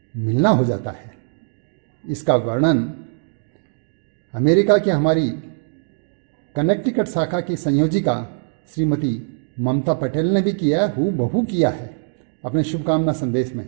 मिलना हो जाता है। इसका वर्णन अमेरिका की हमारी कनेक्टिकट शाखा की संयोजिका श्रीमती ममता पटेल ने भी किया, हूबहू किया है अपने शुभकामना संदेश में।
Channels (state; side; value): silent; left; digital silence